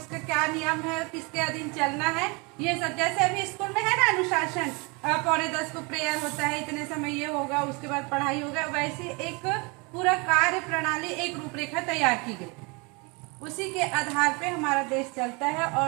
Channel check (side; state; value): left; quieter; 29.5 dB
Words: क्या नियम है, किसके अधीन चलना है, ये सब। जैसे अभी स्कूल में है ना अनुशासन, 9:45 को प्रेयर होता है, इतने समय ये होगा, उसके बाद पढ़ाई होगा, वैसे एक पूरा कार्य प्रणाली, एक रूपरेखा तैयार की गई। उसी के आधार पे हमारा देश चलता है।